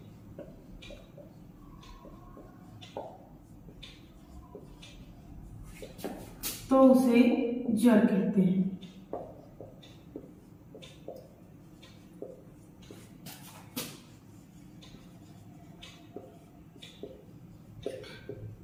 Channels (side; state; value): both; identical; correlation 1.00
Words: तो उसे ज्वर कहते हैं।